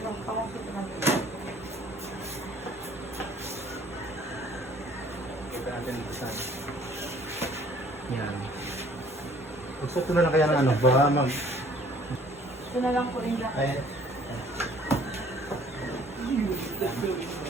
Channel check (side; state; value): both; normal; correlation 0.56